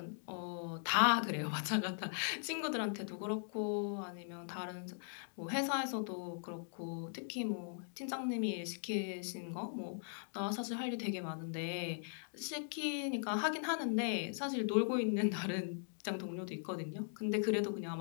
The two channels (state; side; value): silent; right; digital silence